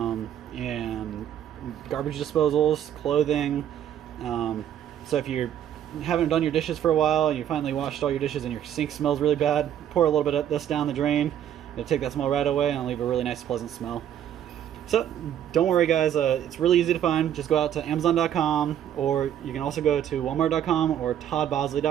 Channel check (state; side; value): quieter; left; 10.3 dB